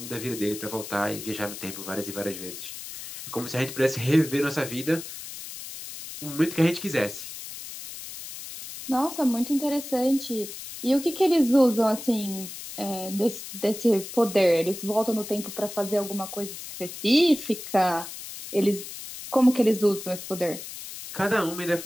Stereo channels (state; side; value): noise; left; hiss, 11 dB below the sound